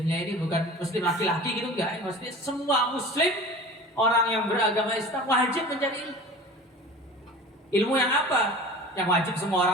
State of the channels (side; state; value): both; normal; correlation 0.38